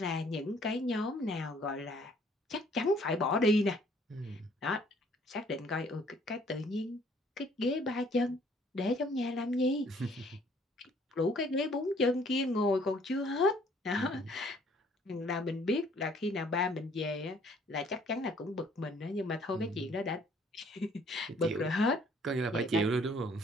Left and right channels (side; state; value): both; normal; correlation 0.60